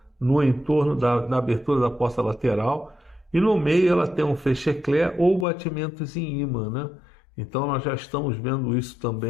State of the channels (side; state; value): right; drops out; at 5.5 s